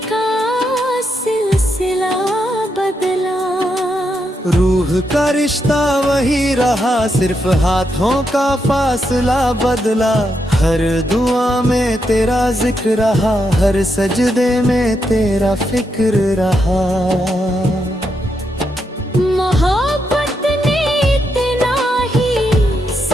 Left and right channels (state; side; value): normal; both; correlation 0.82